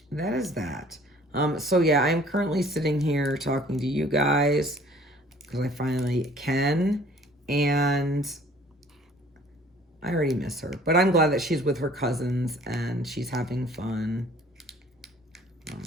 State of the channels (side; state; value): both; normal; correlation 0.54